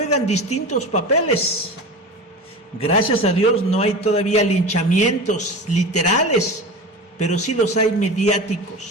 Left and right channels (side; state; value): both; normal; correlation 0.30